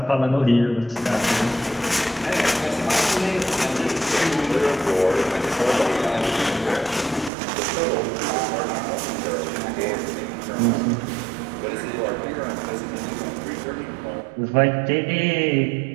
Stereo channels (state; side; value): drops out; left; at 7.3 s